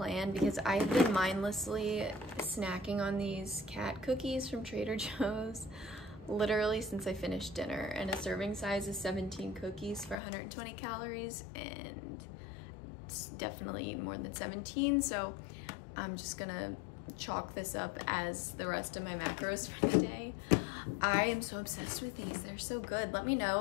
because I've been mindlessly snacking on these cat cookies from Trader Joe's literally since I finished dinner, and a serving size is 17 cookies for 120 calories, and it's definitely more than 17, so I'm just gonna chalk this up as the rest of my macros for the day. I am so obsessed with these. They're so good. Let me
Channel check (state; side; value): drops out; right; at 10.2 s